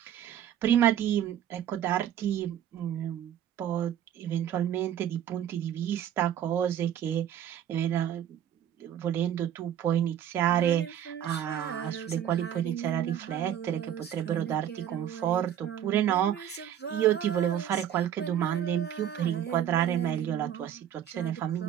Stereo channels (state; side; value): quieter; left; 10.2 dB